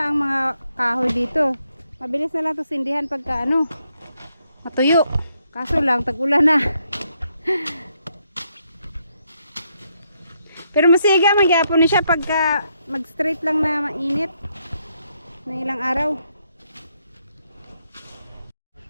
ang mga kahoy dito. Mabilis na lang ito sindihan pagka matuyo. Kaso lang, tag-ulan na. Pero masiga, magyapon na siya pagka mag-straight lang na mainit. Na ilang araw.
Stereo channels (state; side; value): inverted; both; correlation -0.76